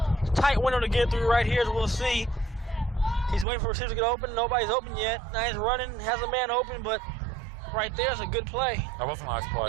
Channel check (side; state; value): left; drops out; at 3.5 s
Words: tight window to get through right here, as we'll see. He's waiting for receivers to get open. Nobody's open yet. Now he's running, has a man open, but right there's a good play. That was a nice play.